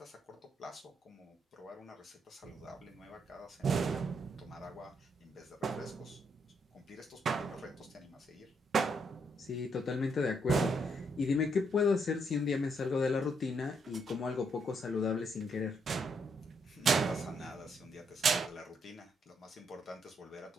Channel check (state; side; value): normal; both; correlation 0.75